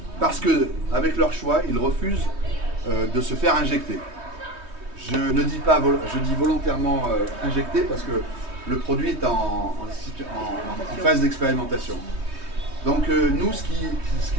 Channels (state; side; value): late; left; 3.2 ms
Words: parce que, avec leur choix, ils refusent de se faire injecter. Je ne dis pas, je dis volontairement injecter parce que le produit est en phase d'expérimentation. Donc nous, ce